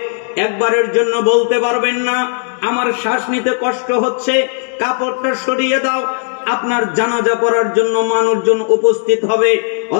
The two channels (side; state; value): right; silent; digital silence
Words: একবারের জন্য বলতে পারবেন না আমার শ্বাস নিতে কষ্ট হচ্ছে কাপড়টা সরিয়ে দাও। আপনার জানাজা পড়ার জন্য মানুষজন উপস্থিত হবে,